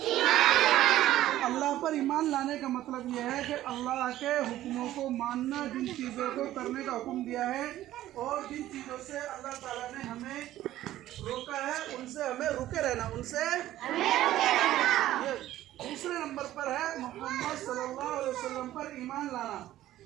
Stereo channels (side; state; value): left; quieter; 14.0 dB